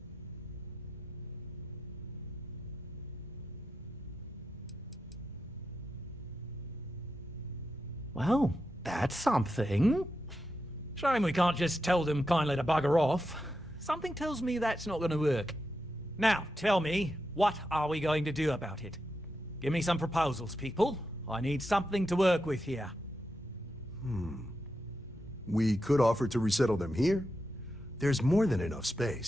Well, that's something. Shame we can't just tell them kindly to bugger off. Something tells me that's not going to work. Now, tell me, what are we going to do about it? Give me some proposals, people. I need something to work with here. We could offer to resettle them here. There's more than enough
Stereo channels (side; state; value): both; normal; correlation 0.87